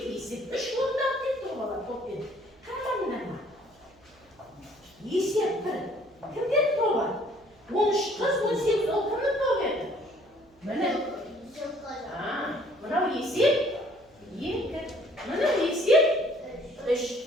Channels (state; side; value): noise; right; hum, 30 dB below the sound